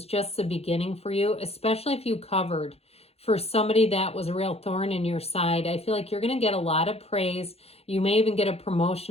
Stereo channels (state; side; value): late; right; 0.29 ms